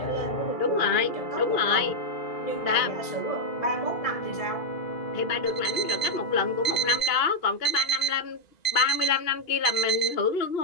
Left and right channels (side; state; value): right; late; 2.8 ms